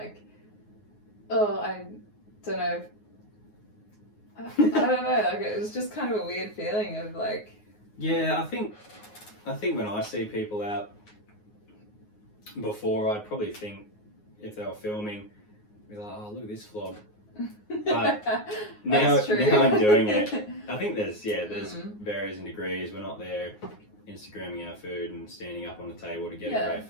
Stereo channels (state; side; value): late; right; 9.5 ms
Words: I don't know, I don't know, like it was just kind of a weird feeling of like. I think when I see people out before, I'd probably think if they were filming, be like, oh, look at this vlog. But now I'm doing it. I think there's varies in degrees. We're not there Instagramming our food and standing up on the table to get a great